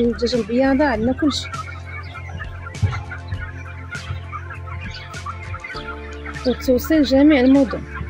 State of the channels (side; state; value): both; identical; correlation 1.00